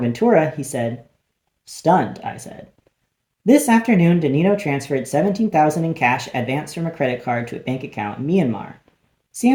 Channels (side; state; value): both; identical; correlation 1.00